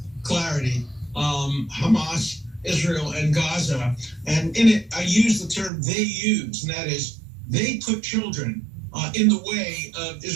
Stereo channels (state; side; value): drops out; left; at 5.7 s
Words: Clarity, Hamas, Israel, and Gaza. And in it, I use the term they use, and that is they put children in the way of